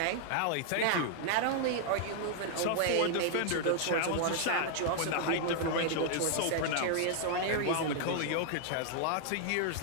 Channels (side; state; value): both; different; correlation -0.01